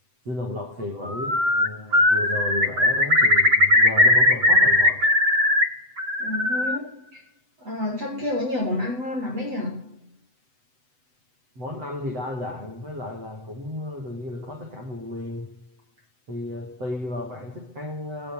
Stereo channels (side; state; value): left; late; 7.9 ms